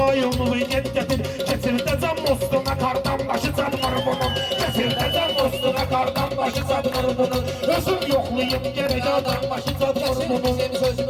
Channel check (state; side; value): identical; both; correlation 1.00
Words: yet gətir. Keçirdəcəm mostuna qardan başı çatmır bunun. Keçirdəcəm mostuna qardan başı çatmır bunun. Özüm yoxlayım gərək yardan başı çatmır Kesir bunun. bizim